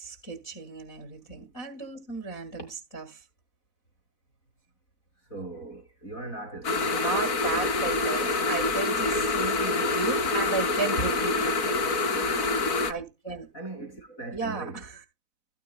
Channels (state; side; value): late; right; 4.0 ms